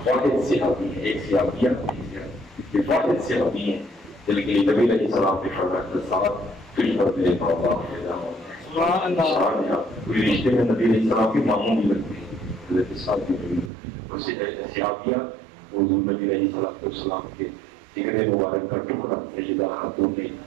واحد صحابی ہے، ایک صحابیہ یہ واحد صحابی ہیں جن کے لیے نبی علیہ السلام نے فرمایا ساتھ تجھ پر میرے بابا فدا ہوتے کوئی رشتے میں نبی علیہ السلام کے ماموں بھی لگتے ہیں، حضرت سعد بن ابی صحابیہ حضور نبی علیہ السلام کے جگر مبارک کا ٹکڑا سیدہ خاتون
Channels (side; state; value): left; drops out; at 13.7 s